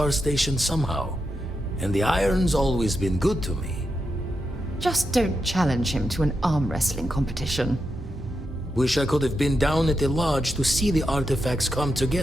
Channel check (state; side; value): normal; both; correlation 0.86